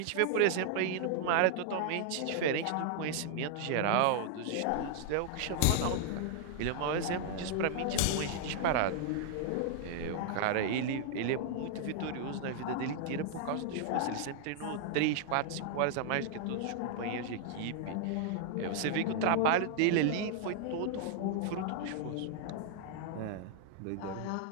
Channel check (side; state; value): both; different; correlation -0.01